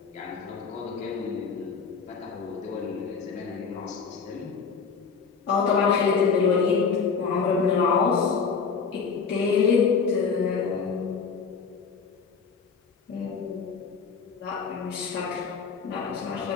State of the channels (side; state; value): right; quieter; 5.6 dB